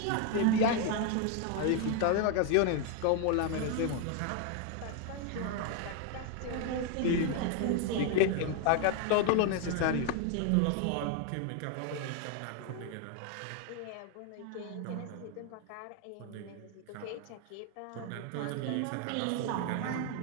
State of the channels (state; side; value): different; both; correlation 0.01